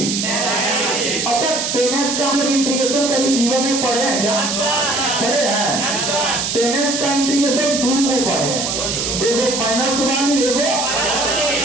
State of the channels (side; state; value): right; noise; hiss, 1 dB below the sound